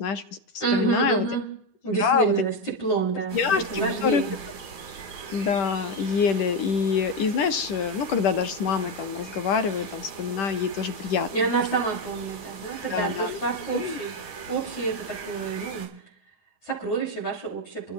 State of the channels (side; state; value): right; late; 10 ms